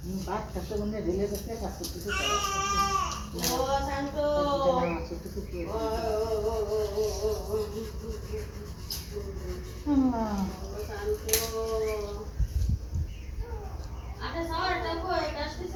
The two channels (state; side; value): identical; both; correlation 1.00